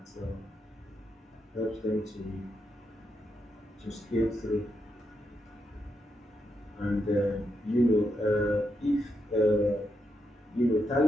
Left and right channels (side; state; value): both; normal; correlation 0.83